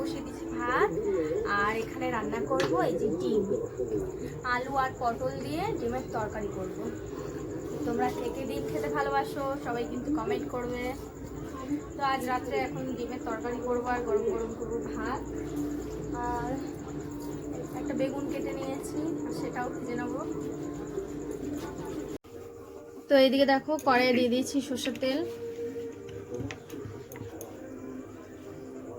দিচ্ছি ভাত, আর এখানে রান্না করব এই যে ডিম, আলু আর পটল দিয়ে ডিমের তরকারি করব। তোমরা কে কে ডিম খেতে ভালোবাসো সবাই কিন্তু কমেন্ট করবে। তো আজ রাত্রে এখন ডিমের তরকারি করবো আর গরম গরম করবো ভাত, আর একটা বেগুন কেটে নিয়েছি আর সেটাও ভেজে নেবো। তো এইদিকে দেখো কড়াইয়ে দিয়ে দিয়েছি সর্ষের তেল,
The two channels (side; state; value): both; identical; correlation 1.00